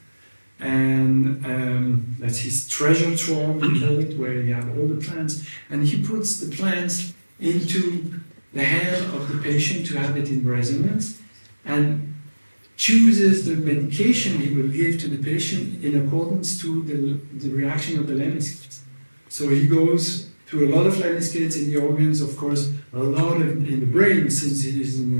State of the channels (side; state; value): both; inverted; correlation -1.00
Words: and that's his treasure trove, we call it, where you have all the plants, and he puts the plants into the hand of the patient to have it in resonance, and chooses the medication he will give to the patient in accordance to the reaction of the lemniscates. So he goes to a lot of lemniscates in the organs, of course, a lot in the brain, since he is a